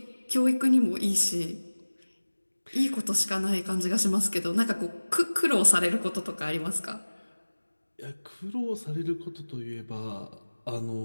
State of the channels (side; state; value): both; inverted; correlation -1.00